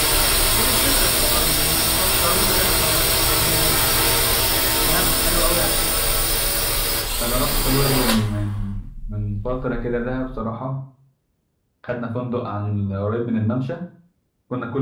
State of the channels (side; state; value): both; identical; correlation 1.00